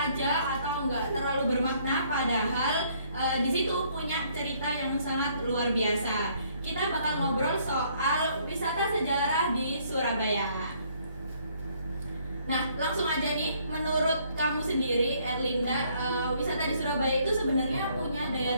aja atau enggak terlalu bermakna, padahal di situ punya cerita yang sangat luar biasa. Kita bakal ngobrol soal wisata sejarah di Surabaya. Nah, langsung aja nih, menurut kamu sendiri, Erlinda, wisata di Surabaya itu sebenarnya punya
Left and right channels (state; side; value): inverted; both; correlation -0.65